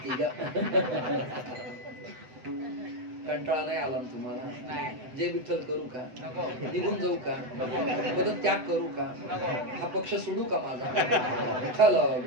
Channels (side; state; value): left; late; 7.9 ms